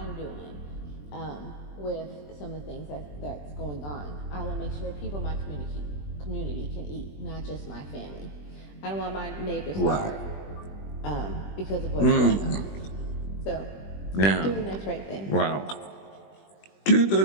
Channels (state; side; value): late; right; 20 ms